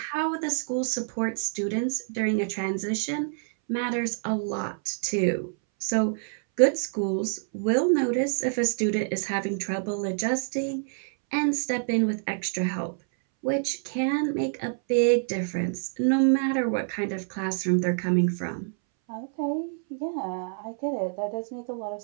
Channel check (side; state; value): left; silent; 60 dB below the other